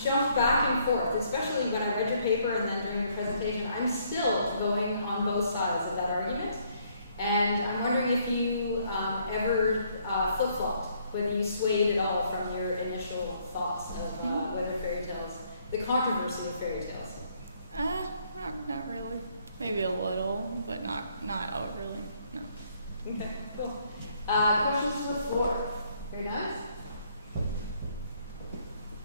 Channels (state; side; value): inverted; both; correlation -0.68